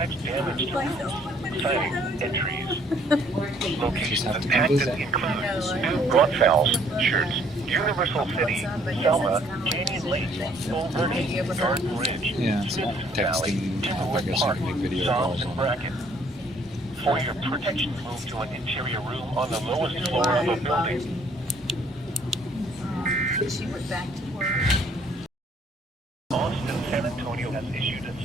damage to roofs, siding, and trees. Locations impacted include New Braunfels, Shirts, Universal City, Selma, Canyon Lake, Bull Verde, Garden Ridge, Yeah, it's not Valley, texting. I guess I Park, can make video Psalms, calls and on it. Bracken. For your protection, move to an interior room on the lowest floor of a building. She went back to work. Austin, San Antonio has issued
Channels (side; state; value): both; normal; correlation 0.62